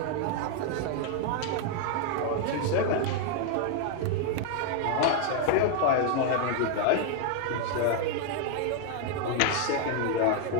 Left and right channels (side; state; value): both; different; correlation 0.00